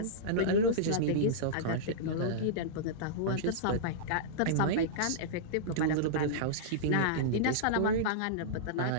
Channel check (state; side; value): different; both; correlation -0.03